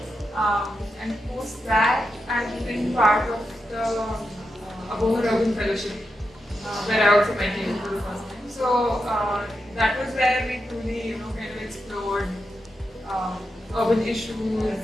And post that, I've been part of the Apoorva Urban Fellowship, where I also met you for the first time. So that was where we truly, kind of explored urban issues,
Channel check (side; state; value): both; normal; correlation 0.87